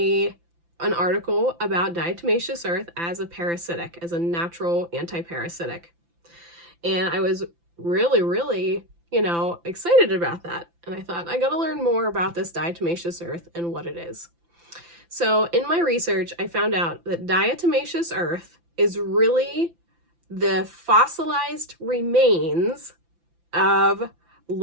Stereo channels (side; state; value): left; late; 5.9 ms